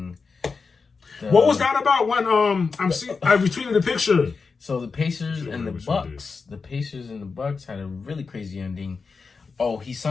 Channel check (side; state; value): right; quieter; 4.8 dB